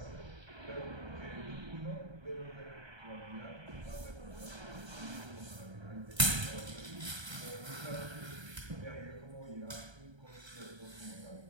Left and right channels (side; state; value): left; late; 1.3 ms